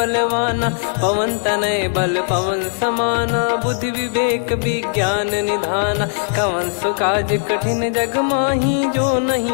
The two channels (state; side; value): silent; right; digital silence